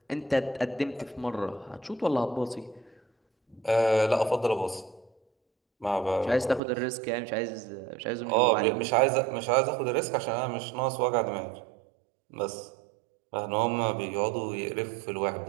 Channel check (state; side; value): drops out; left; at 6.6 s